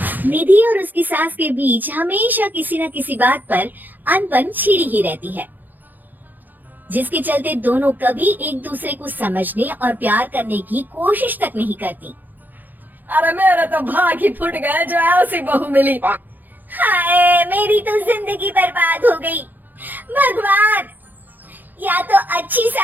निधि और उसकी सास के बीच हमेशा किसी न किसी बात पर अनबन छिड़ी ही रहती है, जिसके चलते दोनों कभी एक दूसरे को समझने और प्यार करने की कोशिश तक नहीं करती। अरे मेरे तो भाग ही फुट गए जो ऐसी बहू मिली। हाय, मेरी तो जिंदगी बर्बाद हो गई। भगवान, या तो अच्छी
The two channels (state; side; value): late; left; 0.086 ms